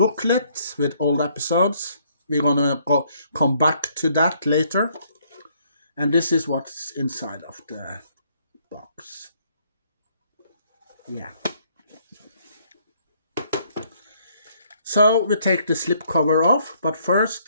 with all the episodes. We're gonna come back to that later. And this is what's inside of the box. Yeah. So we take the slipcover off, but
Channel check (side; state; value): both; inverted; correlation -0.66